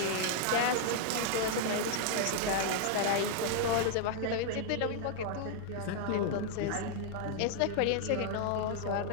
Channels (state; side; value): different; both; correlation -0.01